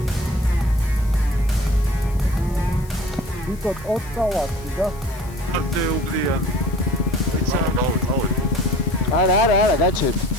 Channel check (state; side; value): noise; left; hiss, 22 dB below the sound